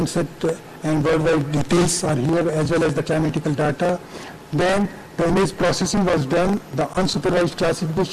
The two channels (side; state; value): both; identical; correlation 1.00